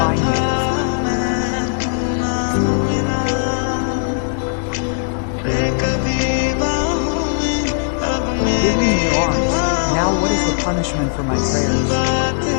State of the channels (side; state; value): right; silent; digital silence